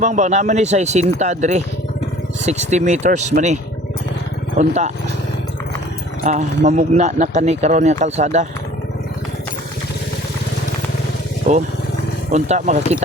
naman ni sa Sinta dre 60 meters mani unta mamugna na kani karon nga kalsada unta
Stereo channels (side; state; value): both; normal; correlation 0.50